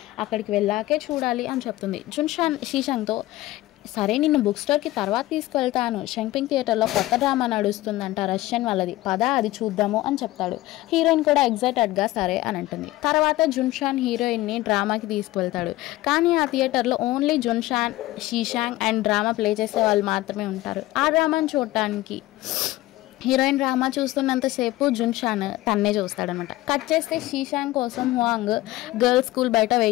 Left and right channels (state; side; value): quieter; right; 17.3 dB